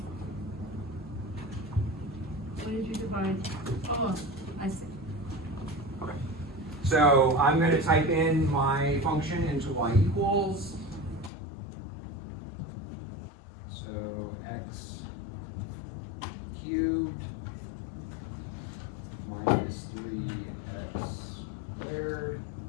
What did you divide? Oh, I see. Okay. So I'm gonna type in my function into y equals. So x cubed minus 3x squared,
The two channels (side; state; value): right; drops out; at 11.3 s